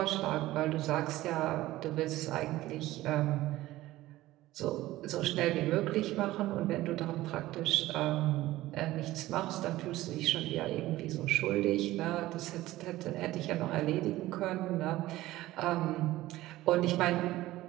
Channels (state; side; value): quieter; left; 16.6 dB